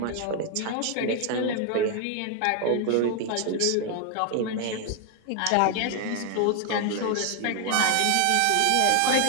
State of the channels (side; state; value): both; different; correlation 0.00